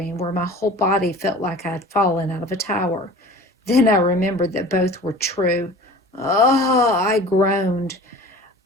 where my whole body felt like I had fallen out of a tower. Then I remembered that both were true. Oh, I groaned.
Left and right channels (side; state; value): both; normal; correlation 0.42